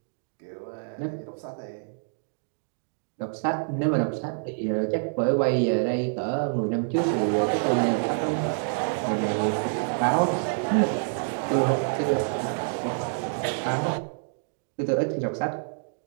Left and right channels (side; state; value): left; silent; digital silence